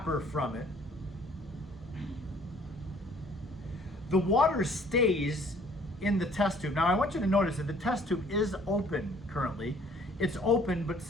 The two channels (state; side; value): normal; both; correlation 0.58